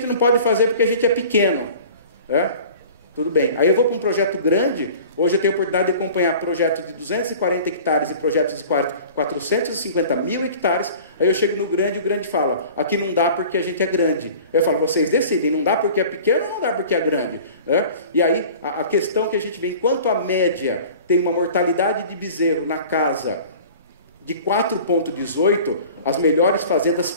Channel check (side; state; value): both; inverted; correlation -0.44